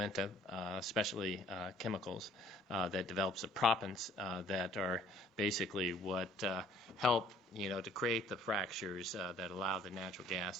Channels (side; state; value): both; normal; correlation 0.58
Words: Specialty Chemicals, that develops the proppants that are basically what help to create the fractures that allow the natural